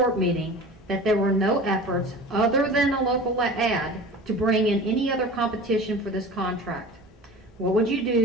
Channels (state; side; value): normal; both; correlation 0.37